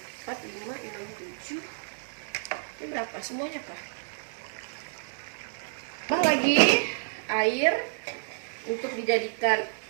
4, 5, 6, 7. Ini berapa semuanya kah? Tambah lagi air untuk dijadikan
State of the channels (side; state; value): left; silent; digital silence